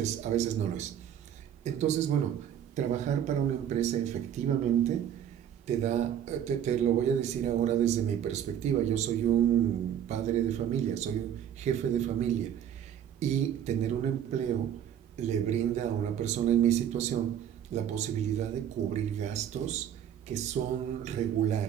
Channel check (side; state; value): left; quieter; 9.7 dB